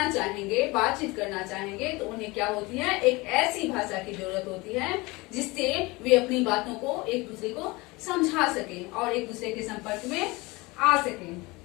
चाहेंगे, बातचीत करना चाहेंगे, तो उन्हें क्या होती है? एक ऐसी भाषा की जरूरत होती है जिससे वे अपनी बातों को एक दूसरे को समझा सकें और एक दूसरे के संपर्क में आ सकें।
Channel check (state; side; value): quieter; right; 23.5 dB